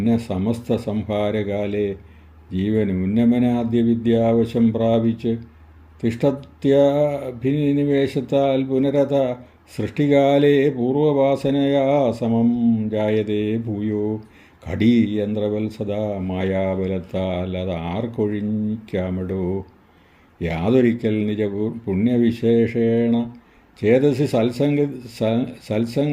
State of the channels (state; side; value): identical; both; correlation 1.00